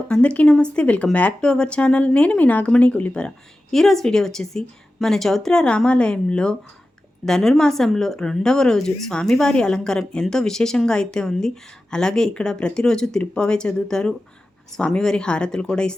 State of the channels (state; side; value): normal; both; correlation 0.94